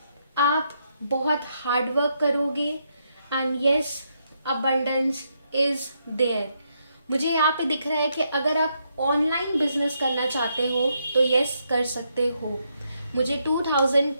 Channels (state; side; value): inverted; both; correlation -0.78